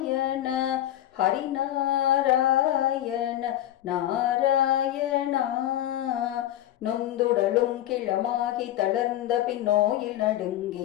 ஹரிநாராயண நாராயணா. நொந்துடலும் கிளமாகி தளர்ந்த பின் நோயில்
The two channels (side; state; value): right; quieter; 13.0 dB